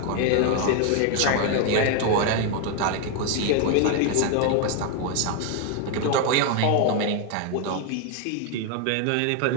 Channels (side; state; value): both; different; correlation 0.01